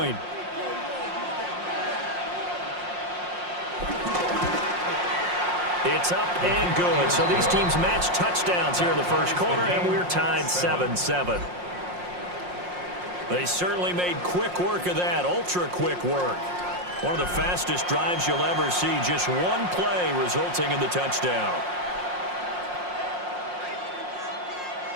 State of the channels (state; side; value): late; left; 5.6 ms